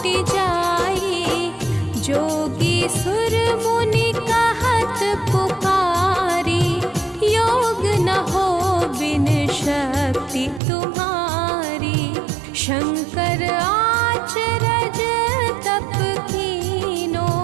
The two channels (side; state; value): left; drops out; at 10.6 s